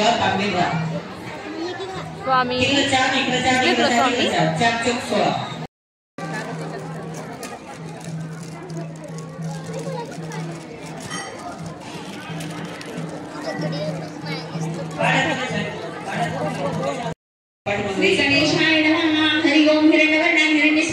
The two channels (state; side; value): identical; both; correlation 1.00